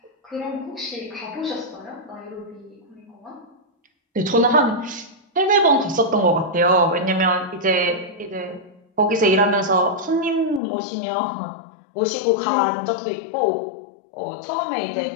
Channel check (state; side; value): drops out; right; at 10.6 s